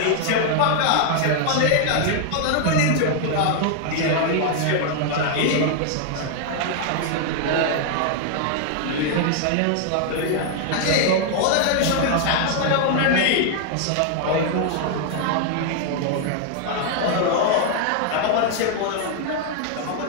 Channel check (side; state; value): both; different; correlation 0.00